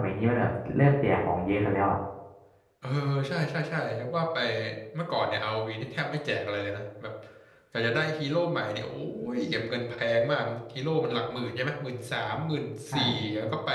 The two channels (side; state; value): both; identical; correlation 1.00